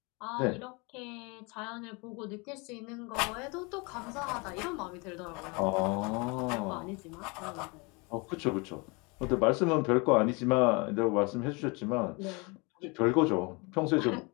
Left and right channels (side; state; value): right; quieter; 28.9 dB